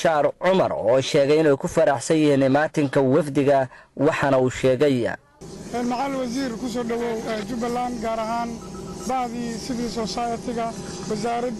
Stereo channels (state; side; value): identical; both; correlation 1.00